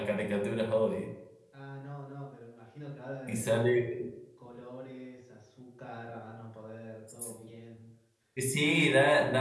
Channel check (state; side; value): identical; both; correlation 1.00